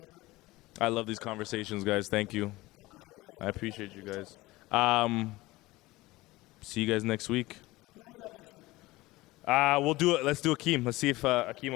I love these conversations, guys. Thank you. I appreciate you guys. See you guys next week. We'll do it. Let's do Akeem. Let's see if Akeem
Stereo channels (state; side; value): quieter; right; 19.7 dB